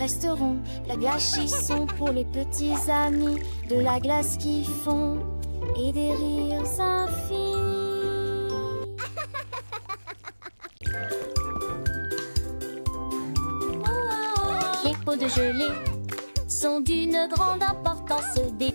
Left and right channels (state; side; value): inverted; both; correlation -1.00